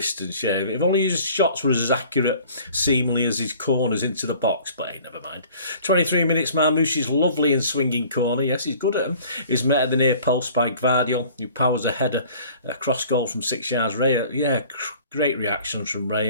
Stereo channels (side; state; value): both; inverted; correlation -0.50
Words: Yeah, if only his shots were as accurate seemingly as his corners into the box, but hey, never mind. 23 minutes, Marmoush's lovely and swinging corner, yes, he's good at them, is met at the near post by Gvardiol, who powers a header, a cross goal from 6 yards. Raya, yeah, great reactions from